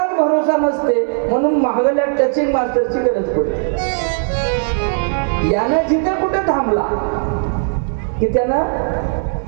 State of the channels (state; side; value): silent; left; digital silence